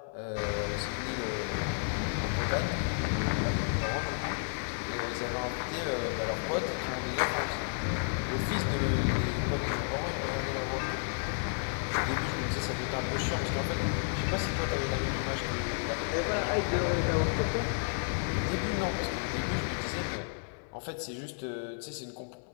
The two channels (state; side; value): silent; right; 56 dB below the other